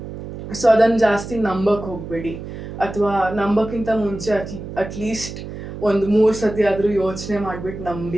ಸೊ ಅದನ್ನು ಜಾಸ್ತಿ ನಂಬಕ್ಕೆ ಹೋಗಬೇಡಿ, ಅಥವಾ ನಂಬಕ್ಕಿಂತ ಮುಂಚೆ ಅಟ್ಲೀಸ್ಟ್ ಒಂದು 3 ಸತಿ ಆದರೂ ಯೋಚನೆ ಮಾಡಿಬಿಟ್ಟು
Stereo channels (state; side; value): noise; right; hum, 10 dB below the sound